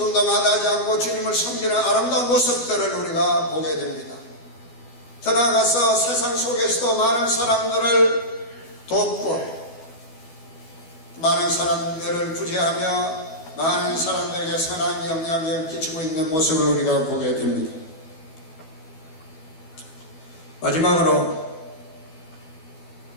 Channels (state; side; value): late; right; 12 ms